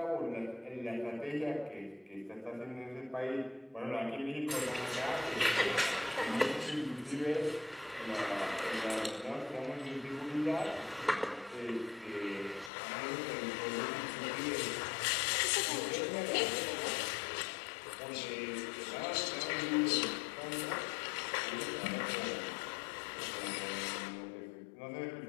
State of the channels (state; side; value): drops out; right; at 12.7 s